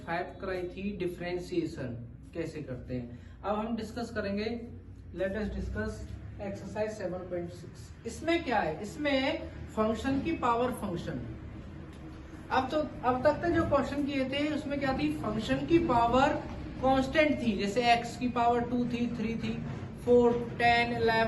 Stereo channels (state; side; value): identical; both; correlation 1.00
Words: कराई थी, डिफरेंशिएशन कैसे करते हैं। अब हम डिस्कस करेंगे, लेट अस डिस्कस एक्सरसाइज 7.6। इसमें क्या है, इसमें फंक्शन की पावर फंक्शन। अब तक जो क्वेश्चन किए थे उसमें क्या थी, फंक्शन की पावर कांस्टेंट थी, जैसे x की पावर 2 थी, 3 थी, 4, 10,